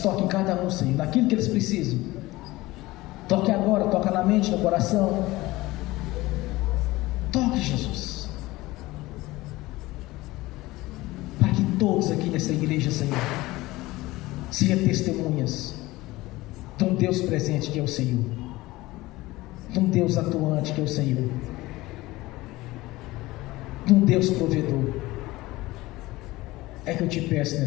toque em cada um, Senhor, naquilo que eles precisam. Toque agora, toca na mente, no coração. Toque, Jesus, para que todos aqui nessa igreja, Senhor, sejam testemunhas de um Deus presente que é o Senhor, de um Deus atuante que é o Senhor, de um Deus provedor. É que eu te peço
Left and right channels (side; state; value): right; quieter; 19.3 dB